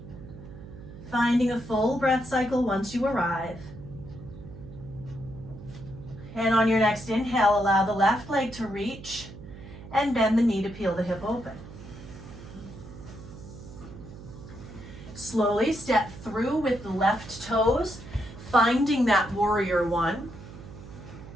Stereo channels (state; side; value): noise; right; hum, 15 dB below the sound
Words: Finding a full breath cycle once you arrive. And on your next inhale, allow the left leg to reach and bend the knee to peel the hip open. Slowly step through with the left toes, finding that warrior one.